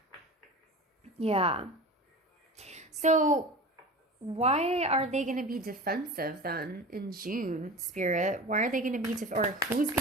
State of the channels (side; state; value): both; normal; correlation 0.34